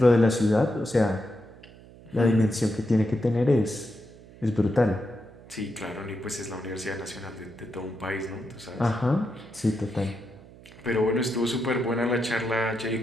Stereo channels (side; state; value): right; noise; hum, 21 dB below the sound